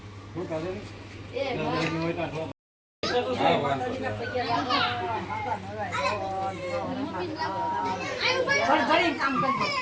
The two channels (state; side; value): identical; both; correlation 1.00